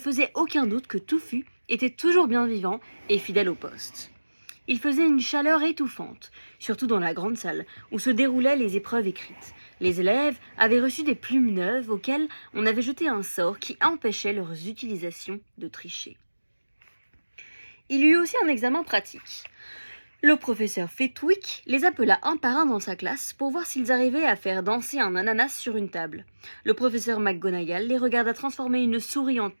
aucun doute que Touffu était toujours bien vivant et fidèle au poste. Il faisait une chaleur étouffante, surtout dans la grande salle où se déroulaient les épreuves écrites. Les élèves avaient reçu des plumes neuves auxquelles on avait jeté un sort qui empêchait leurs utilisations de tricher. Il y eut aussi un examen pratique. Le professeur Flitwick les appela un par un dans sa classe pour voir s'ils arrivaient à faire danser un ananas sur une table. Le professeur McGonagall les regarda transformer une souris en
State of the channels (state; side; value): inverted; both; correlation -1.00